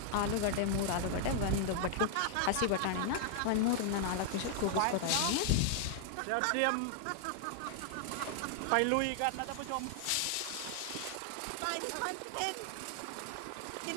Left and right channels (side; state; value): both; different; correlation 0.00